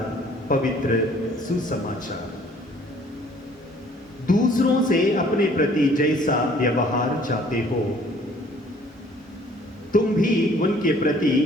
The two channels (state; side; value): normal; both; correlation 0.57